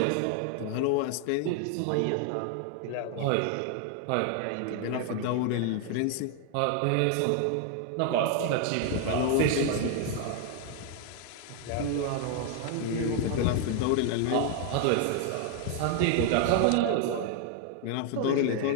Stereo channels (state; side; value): different; both; correlation 0.00